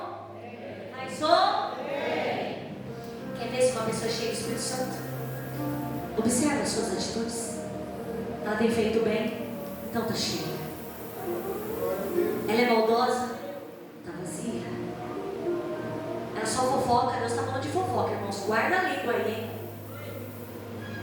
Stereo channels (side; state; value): both; identical; correlation 1.00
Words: bem. Quer ver se uma pessoa é cheia do Espírito Santo? Observa as suas atitudes. Ela tem feito o bem, então está cheia. Ela é maldosa, está vazia. Ela só fofoca. Deus está falando de fofoca, irmãos. Guarda a língua aí, hein?